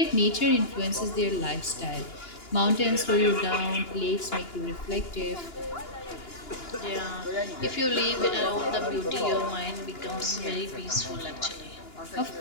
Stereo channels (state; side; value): late; right; 2.9 ms